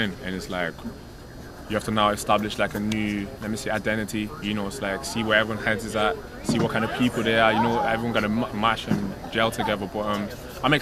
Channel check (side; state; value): both; identical; correlation 1.00